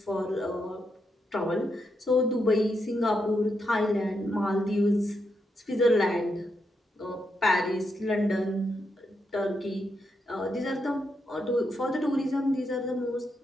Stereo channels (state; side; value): normal; both; correlation 0.82